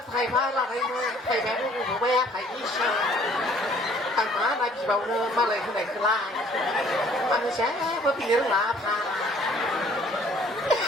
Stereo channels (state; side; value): normal; both; correlation 0.57